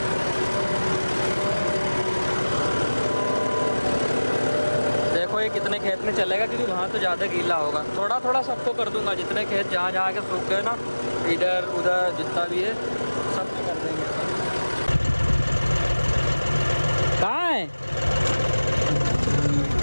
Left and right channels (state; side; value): inverted; both; correlation -1.00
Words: देखो ये कितने खेत में चलेगा, क्योंकि वहाँ तो ज़्यादा गीला होगा। थोड़ा थोड़ा सबको कर दूंगा, जितने खेत जहाँ जहाँ के सूख गए ना, इधर उधर जितना भी है सब कर देंगे। कहाँ है